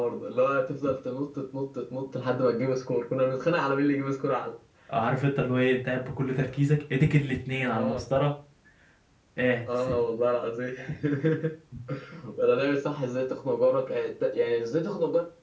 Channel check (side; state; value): both; identical; correlation 1.00